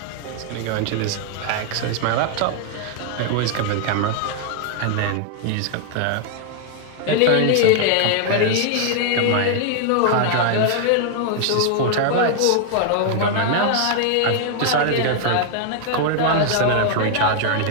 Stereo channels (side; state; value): both; different; correlation 0.00